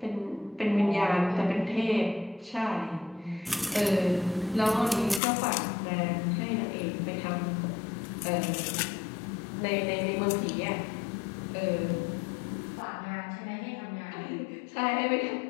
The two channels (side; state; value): right; drops out; at 5.2 s